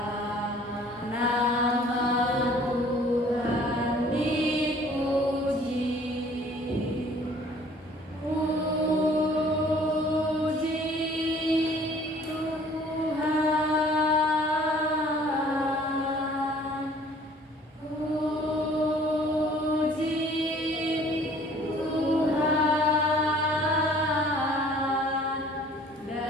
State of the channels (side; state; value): both; normal; correlation 0.54